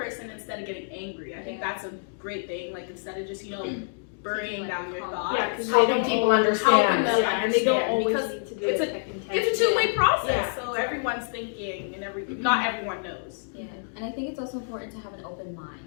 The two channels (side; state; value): right; silent; digital silence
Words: instead of getting angry. I think that's a great thing. Like, instead of just, burying down your thoughts. Yeah, because Helping people understand. them and they don't understand, always because need to do it's it. It's a two-way process, Yeah, so exactly. everyone's thinking and not everyone knows. Yeah, and I think it's also important to have an open mind